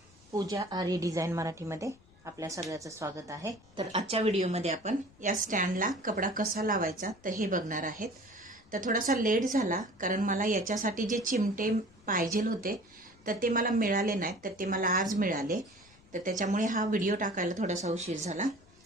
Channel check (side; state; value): left; noise; rumble, 28 dB below the sound